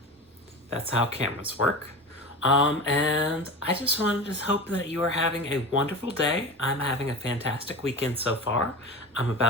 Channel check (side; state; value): both; normal; correlation 0.29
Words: That's how cameras work. And I just wanted to hope that you are having a wonderful day. I'm having a fantastic weekend so far. I'm